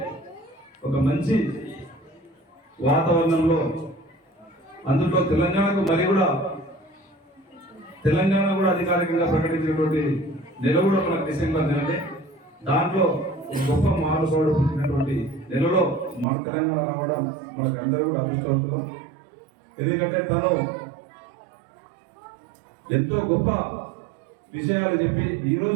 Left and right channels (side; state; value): left; drops out; at 16.2 s